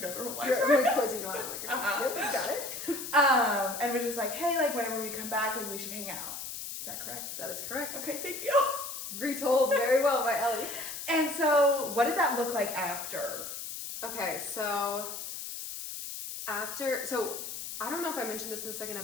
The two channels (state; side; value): noise; left; hiss, 7 dB below the sound